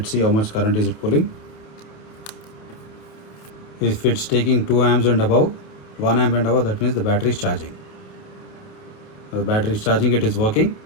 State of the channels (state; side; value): late; right; 27 ms